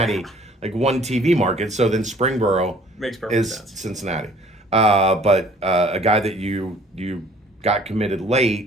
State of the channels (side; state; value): both; normal; correlation 0.55